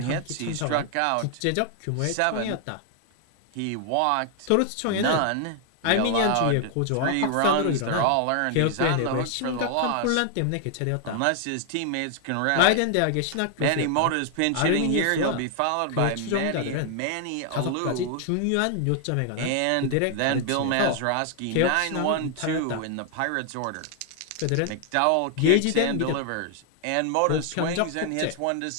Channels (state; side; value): different; both; correlation 0.00